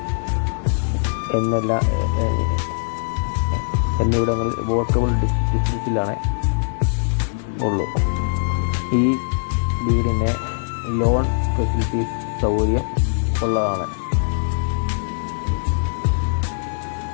എന്നിവിടങ്ങളിൽ വോക്കബിൾ ഡിസ്റ്റൻസിലാണ് ഉള്ളൂ. ഈ വീടിന് ലോൺ ഫെസിലിറ്റീസ് സൗകര്യം ഉള്ളതാണ്.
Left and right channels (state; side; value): silent; right; 65 dB below the other